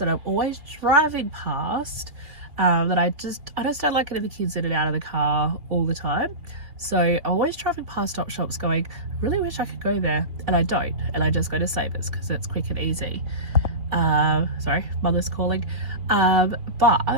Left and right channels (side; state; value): left; late; 2.8 ms